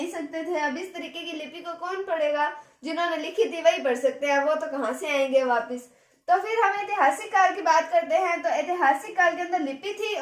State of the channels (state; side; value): identical; both; correlation 1.00